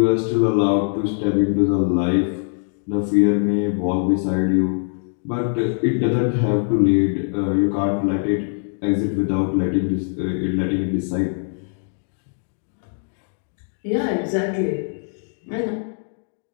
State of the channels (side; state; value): right; silent; digital silence